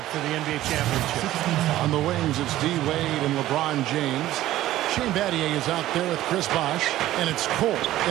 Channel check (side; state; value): left; quieter; 14.6 dB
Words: for the NBA championship. On the wings, it's D. Wade and LeBron James. Shane Battier is out there with Chris Bosh, and it's Cole